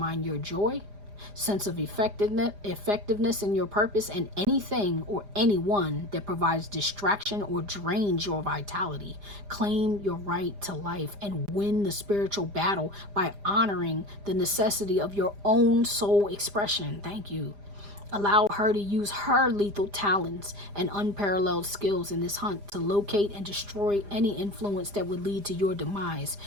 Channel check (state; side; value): late; left; 4.9 ms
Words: your joy, sense of effectiveness in your purpose, and anything or anyone that provides distraction or drains your vitality. Claim your right to life and win the spiritual battle by honoring the necessity of your own soul expression. Thank you. Allow her to use her lethal talents and unparalleled skills in this hunt to locate and destroy any influence that would lead to your demise.